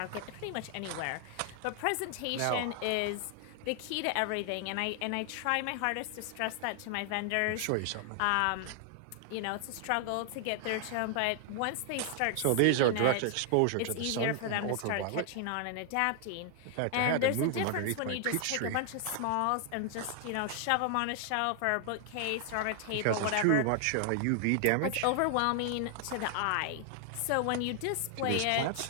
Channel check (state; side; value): different; both; correlation 0.00